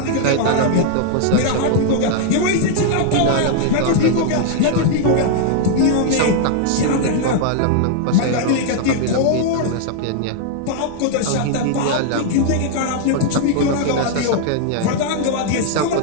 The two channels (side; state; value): both; different; correlation 0.00